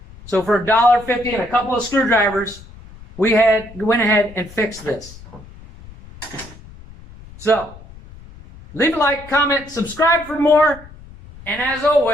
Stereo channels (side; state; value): left; noise; rumble, 19 dB below the sound